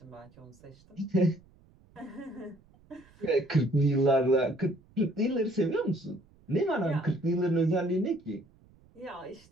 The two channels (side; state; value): right; noise; rumble, 29 dB below the sound